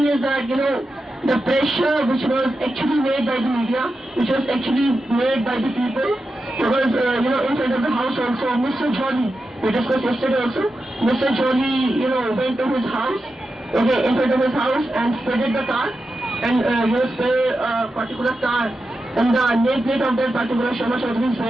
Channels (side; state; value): both; normal; correlation 0.90